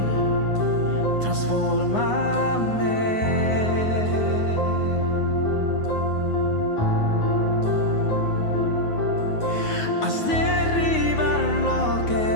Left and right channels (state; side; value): late; right; 9.5 ms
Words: transfórmame. Haz derribar lo